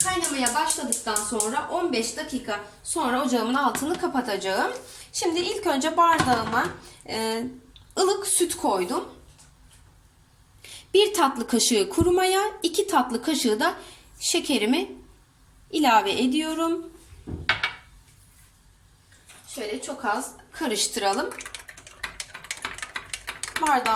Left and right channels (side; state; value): both; identical; correlation 1.00